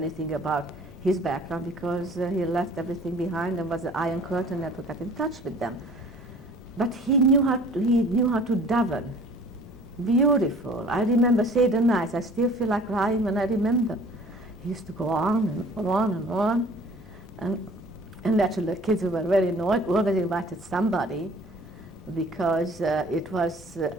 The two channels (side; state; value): both; normal; correlation 0.49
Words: about his background because he left everything behind and was the Iron Curtain, never got in touch with them. But he knew how to daven. Beautiful. I remember Seder nights. I still feel like crying when I remember. He used to go on and on and on. And naturally the kids were very annoyed. We always invited somebody because it was,